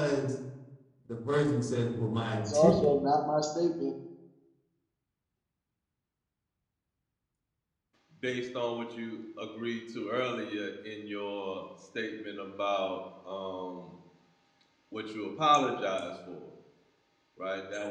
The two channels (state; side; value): identical; both; correlation 1.00